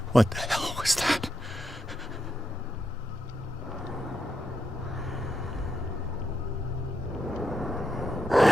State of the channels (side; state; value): both; normal; correlation 0.83